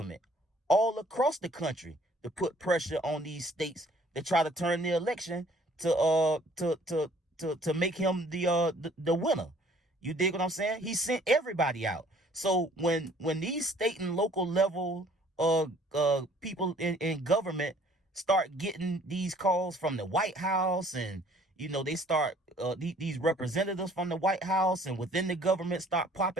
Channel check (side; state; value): both; normal; correlation 0.57